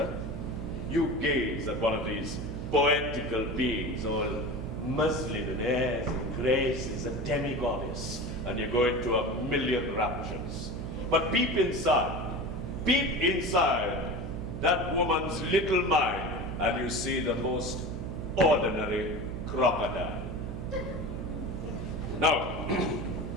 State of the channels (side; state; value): right; noise; hum, 6 dB below the sound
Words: You gaze at one of these poetical beings, all muslin and airs and graces, a demi-goddess, and you go into a million raptures. But peep inside that woman's little mind, and you see the most ordinary crocodile. Now,